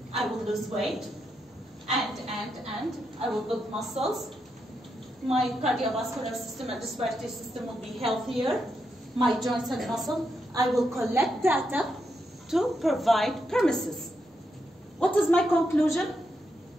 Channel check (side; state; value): both; normal; correlation 0.83